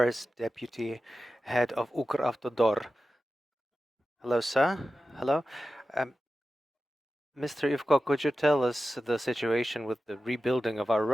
deputy head of Ukravtodor. Hello, sir. Hello. Um, Mr. Ivko, could you tell us the situation with the rebuilding of our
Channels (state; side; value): normal; both; correlation 0.93